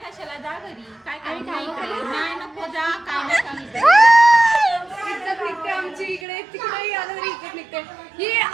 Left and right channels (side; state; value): left; drops out; at 6.2 s